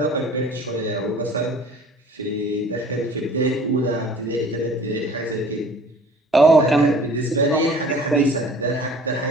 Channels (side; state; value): both; normal; correlation 0.49